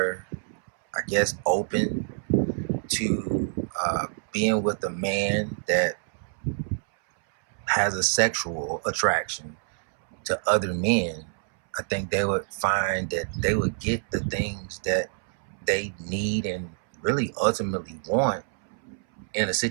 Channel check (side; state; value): left; silent; 60 dB below the other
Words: I guess, open to being with a man that has a sexual attraction to other men, I think they would find that they would get the things that they need and really ultimately want in a